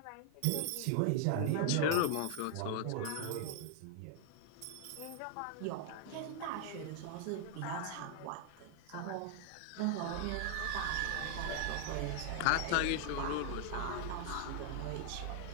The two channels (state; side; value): different; both; correlation 0.00